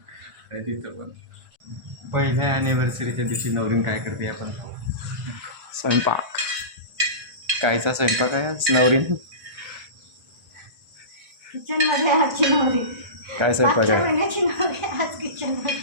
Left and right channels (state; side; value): late; left; 1.3 ms